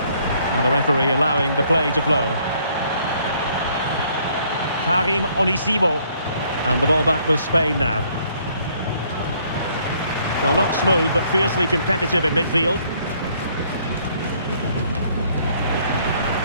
Now the referee allowing the play to flow. Karim Onisivo. And the ball back with Spain now. Well, not smooth, but fiercely competitive in midfield.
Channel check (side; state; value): both; inverted; correlation -0.64